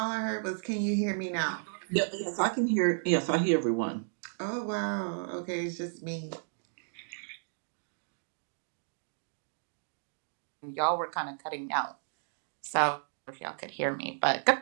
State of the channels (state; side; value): silent; left; digital silence